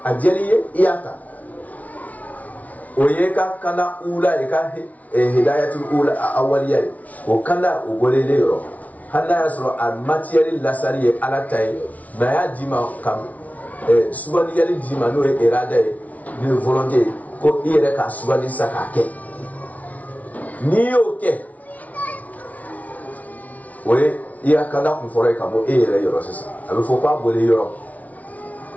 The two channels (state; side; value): late; right; 0.071 ms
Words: ajeliye iyata oyeka kana ula eka hidayatul ula awaliya o kana o golele yoro hana yasro al material lasari ala tay na ya dima kam subali yali dima no erada ni volonté ko ire ka subali sakake ni oke oye iya kana ku fore kamo ire yoro sesa abe fo kwa bole yoro